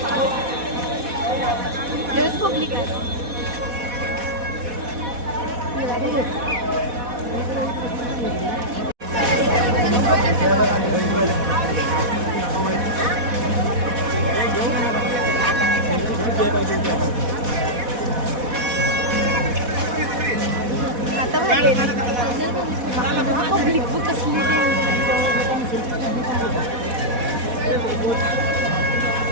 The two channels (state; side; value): late; left; 4.1 ms